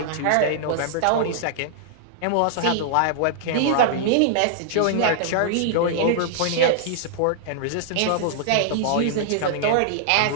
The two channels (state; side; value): different; both; correlation -0.01